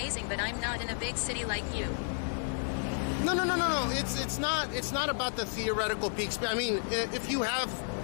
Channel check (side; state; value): right; silent; 57 dB below the other